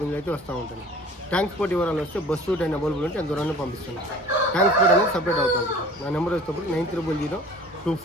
అయితే వస్తూ ఉంటాయి. ట్రాన్స్పోర్ట్ వివరాలు వస్తే బస్సు టైం అవైలబుల్ ఉంటే అంత దూరాన్ని పంపిస్తాను. ట్రాన్స్పోర్ట్ అనేది సపరేట్ అవుతుంది. నా నెంబర్ వచ్చేటప్పుడు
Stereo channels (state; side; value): normal; both; correlation 0.45